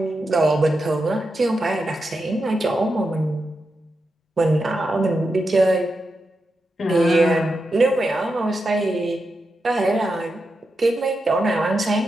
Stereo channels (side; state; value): both; normal; correlation 0.87